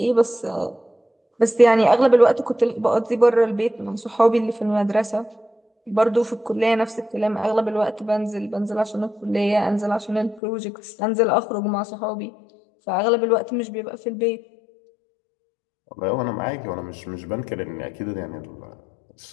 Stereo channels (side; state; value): right; drops out; at 10.4 s